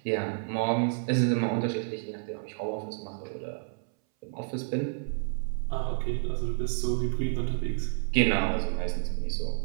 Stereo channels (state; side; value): silent; left; 58 dB below the other